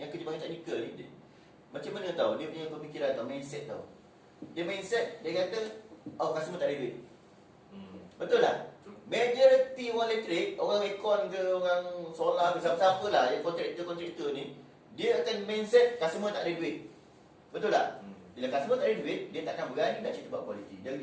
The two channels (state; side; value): identical; both; correlation 1.00